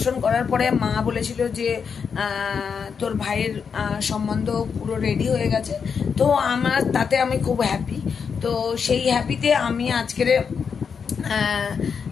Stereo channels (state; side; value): quieter; right; 6.3 dB